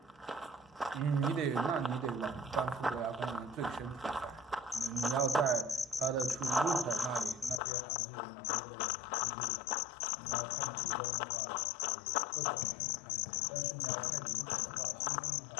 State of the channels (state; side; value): drops out; right; at 7.6 s